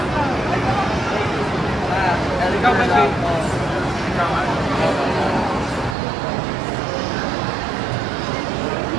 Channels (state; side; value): drops out; left; at 6.0 s